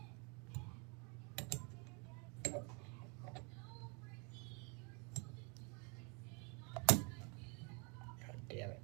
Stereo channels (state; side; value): quieter; left; 33.1 dB